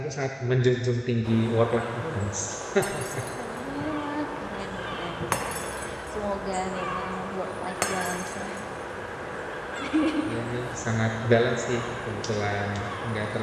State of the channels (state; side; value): identical; both; correlation 1.00